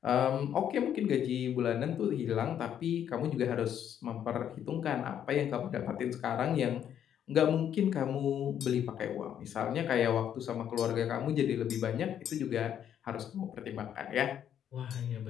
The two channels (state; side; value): quieter; right; 9.6 dB